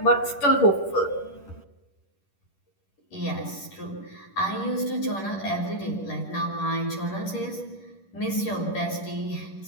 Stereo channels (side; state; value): right; late; 10 ms